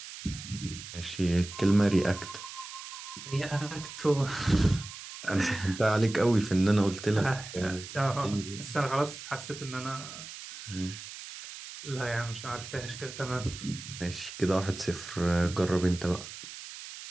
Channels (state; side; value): noise; right; hiss, 12 dB below the sound